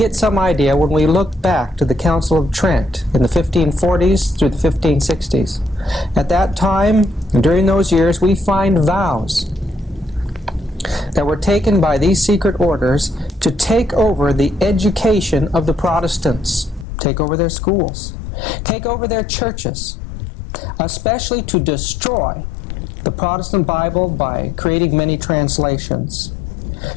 some idea when we look back to the Council of Trent in the 1540s through the 1560s. At that time, during those years, we find vows that were taken by these secret orders to take over the education of the Protestants, take over their schools, take over their churches, especially to destroy the Protestant Bible by creating many translations,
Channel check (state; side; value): drops out; right; at 16.9 s